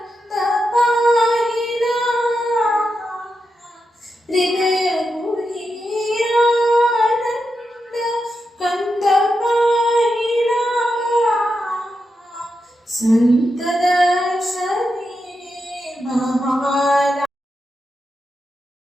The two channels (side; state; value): both; normal; correlation 0.87